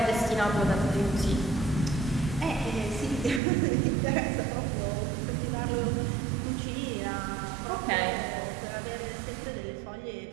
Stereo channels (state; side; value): drops out; left; at 3.4 s